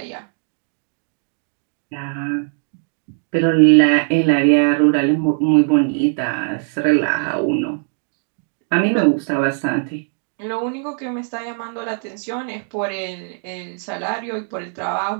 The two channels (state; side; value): silent; left; 66 dB below the other